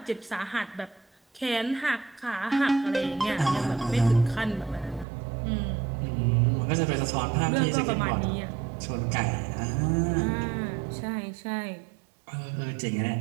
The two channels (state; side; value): drops out; left; at 5.1 s